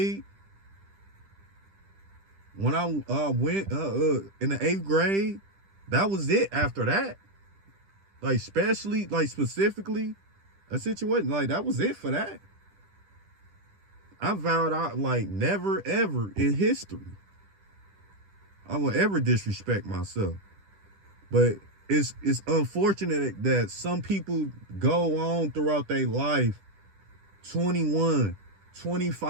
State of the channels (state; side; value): late; left; 10 ms